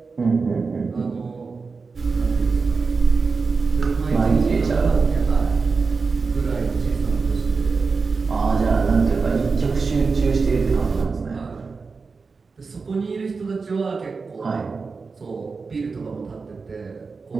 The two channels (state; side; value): quieter; left; 4.6 dB